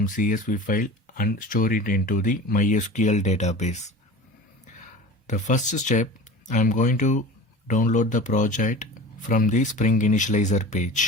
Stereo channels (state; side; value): normal; both; correlation 0.36